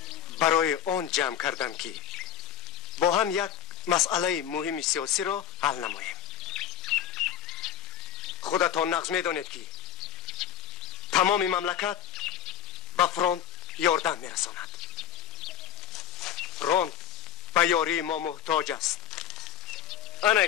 برای آن جمع کردم که با هم یک مسئله مهم سیاسی را حل نماییم. خودتان نقض می‌دانید که تمام مملکت به فرانت یاردن می‌رساند. فرانت به یاری ما محتاج است. انا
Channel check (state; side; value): quieter; right; 10.1 dB